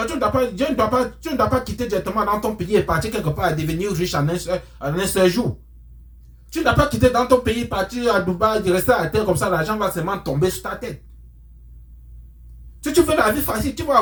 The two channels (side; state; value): both; identical; correlation 1.00